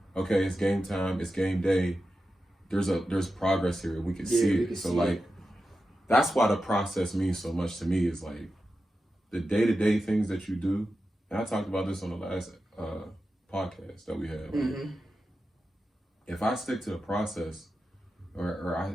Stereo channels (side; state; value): both; normal; correlation 0.91